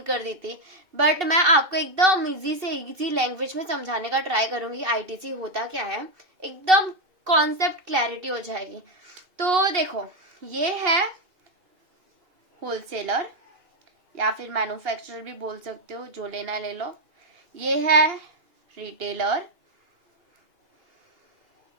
कर दी थी। बट मैं आपको एकदम इजी से इजी लैंग्वेज में समझाने का ट्राई करूंगी आईटीसी होता क्या है, एकदम कॉन्सेप्ट क्लैरिटी हो जाएगी। तो देखो, ये है होलसेलर या फिर मैन्युफैक्चरर भी बोल सकते हो, जो लेना है ले लो। ये है रिटेलर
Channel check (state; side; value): late; left; 2.7 ms